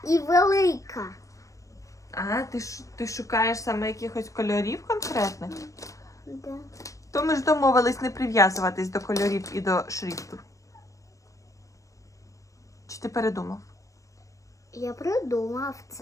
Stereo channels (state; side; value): late; right; 0.16 ms